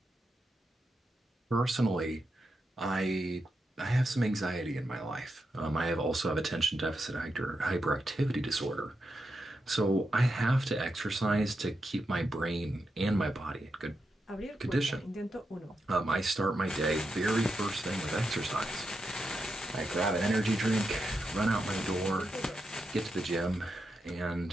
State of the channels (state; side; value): normal; both; correlation 0.86